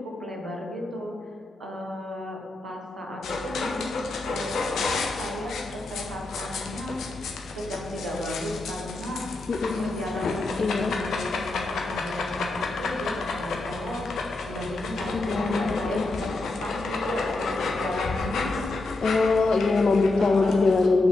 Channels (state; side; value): quieter; right; 3.0 dB